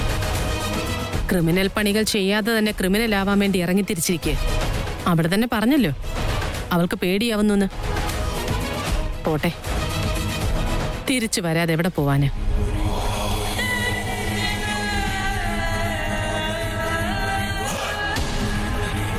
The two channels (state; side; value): identical; both; correlation 1.00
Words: ക്രിമിനൽ പണികൾ ചെയ്യാതെ തന്നെ ക്രിമിനൽ ആവാൻ വേണ്ടി ഇറങ്ങി തിരിച്ചിരിക്കുക. അവിടെ തന്നെ പറഞ്ഞല്ലോ അവൾക്ക് പേടിയാവുന്നു. പോട്ടെ, തിരിച്ചു വരാതെ എവിടെ പോവാന്?